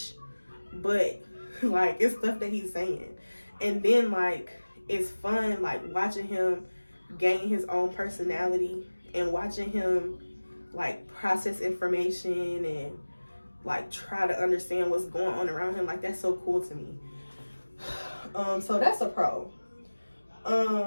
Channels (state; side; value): inverted; both; correlation -1.00